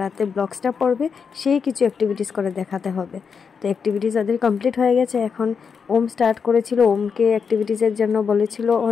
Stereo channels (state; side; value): quieter; right; 6.1 dB